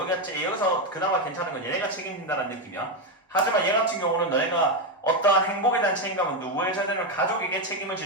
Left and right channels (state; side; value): normal; both; correlation 0.08